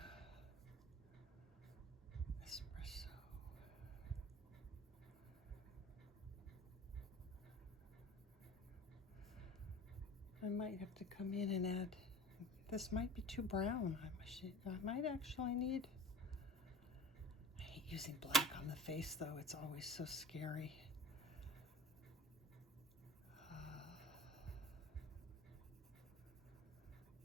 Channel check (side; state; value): both; normal; correlation 0.37